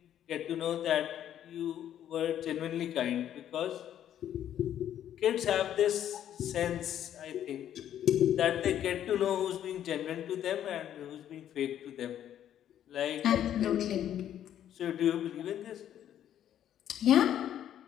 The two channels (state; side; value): quieter; right; 10.7 dB